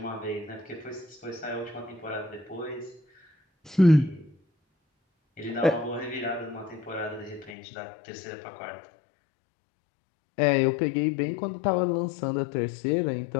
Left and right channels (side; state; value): right; drops out; at 7.6 s